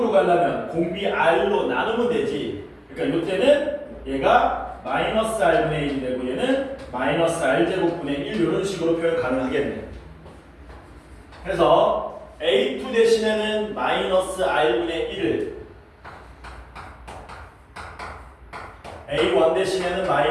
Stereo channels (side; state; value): both; identical; correlation 1.00